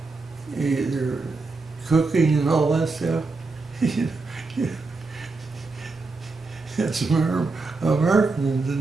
cooking and all that stuff. That's Americans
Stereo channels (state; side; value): quieter; left; 3.8 dB